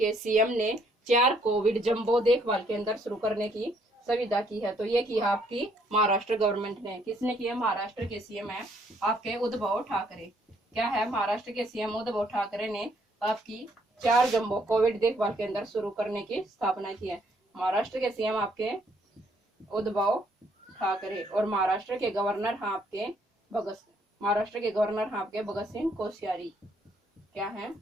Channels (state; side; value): normal; both; correlation 0.68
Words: सीएम ने 4 कोविड जंबो देखभाल केंद्र शुरू करने की सुविधा की है। तो ये की है आपकी महाराष्ट्र गवर्नमेंट ने। किसने की है? महाराष्ट्र के सीएम है आपके उद्धव ठाकरे। क्या है? महाराष्ट्र के सीएम उद्धव ठाकरे ने आपकी 4 जंबो कोविड देखभाल केंद्र शुरू करने की स्थापना की है। महाराष्ट्र के सीएम आपके उद्धव ठाकरे और महाराष्ट्र के गवर्नर हैं आपके भगत सिंह कोश्यारी। क्या है?